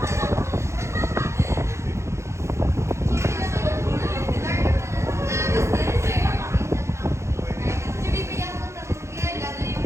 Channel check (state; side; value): late; left; 0.14 ms